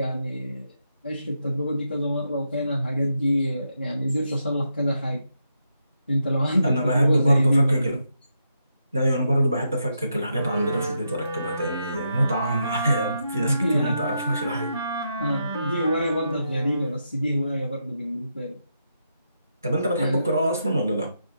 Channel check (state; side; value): inverted; both; correlation -0.82